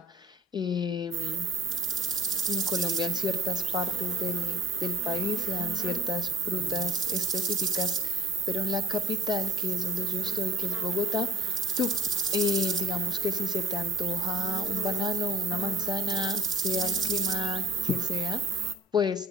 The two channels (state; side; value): normal; both; correlation 0.47